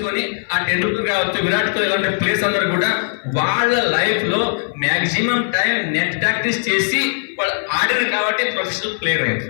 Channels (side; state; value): right; silent; 58 dB below the other